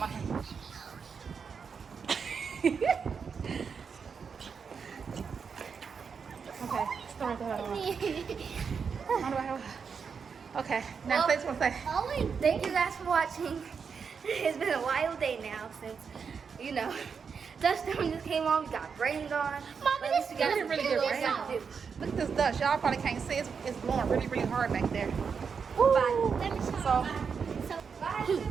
hand. Okay, start Okay, now say what I say. Thank you guys for watching. It's been a wild day now since, you know, dust storm just came on. We got rained on. Mama, But this you guys is really feel good what rain. you gotta do. Look at this dust. Y'all probably can't see it. It's blowing really, really hard back there. Ooh. Let me show So, you. So,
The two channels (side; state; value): left; quieter; 6.0 dB